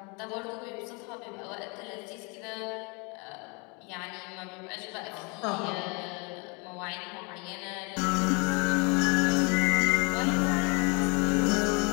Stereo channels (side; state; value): right; quieter; 31.7 dB